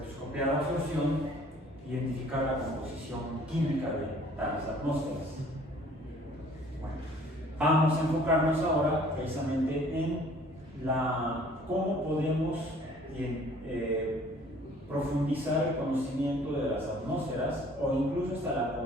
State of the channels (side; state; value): both; normal; correlation 0.54